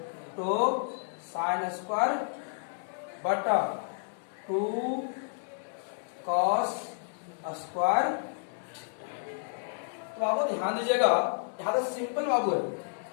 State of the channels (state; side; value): silent; right; digital silence